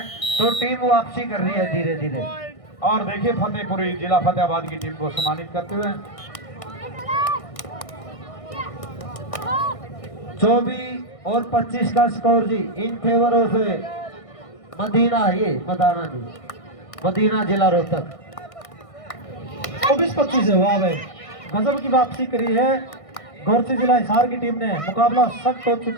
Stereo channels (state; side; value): late; right; 1.6 ms